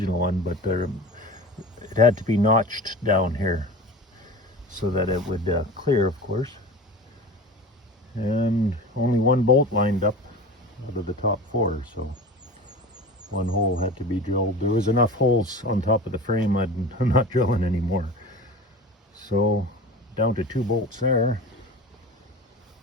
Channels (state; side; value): normal; both; correlation 0.34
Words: one, but it had to be notched down here so that it would clear, of course. And only one bolt lined up out of the top 4, so one hole had to be drilled. There was enough holes on top of the frame, I'm not drilling anymore. So down to 2 bolts there,